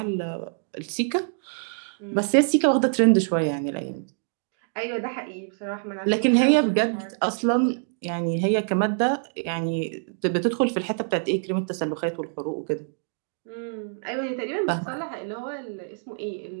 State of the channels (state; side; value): silent; left; digital silence